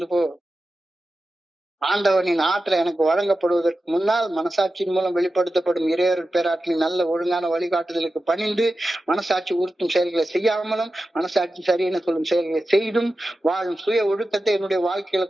போ. ஆண்டவனின் ஆற்றல் எனக்கு வழங்கப்படுவதற்கு முன்னால் மனசாட்சியின் மூலம் வெளிப்படுத்தப்படும் இறையருள் பேராற்றலின் நல்ல ஒழுங்கான வழிகாட்டுதலுக்கு பணிந்து மனசாட்சி உறுத்தும் செயல்களை செய்யாமலும் மனசாட்சி சரியென சொல்லும் செயல்களை செய்தும் வாழும் சுய ஒழுக்கத்தை என்னுடைய வாழ்க்கையில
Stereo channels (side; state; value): both; normal; correlation 0.92